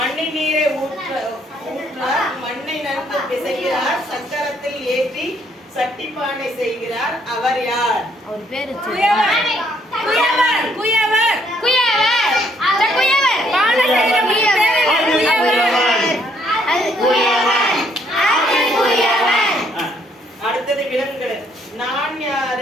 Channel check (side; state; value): both; normal; correlation 0.68